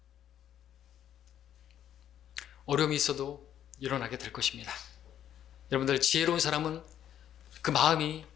어려움이 있어도 일어나게 될 것입니다. 여러분들 지혜로운 사람은 그 마음이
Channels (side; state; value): right; quieter; 10.4 dB